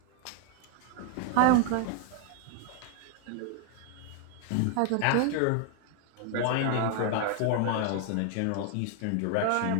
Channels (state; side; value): different; both; correlation 0.00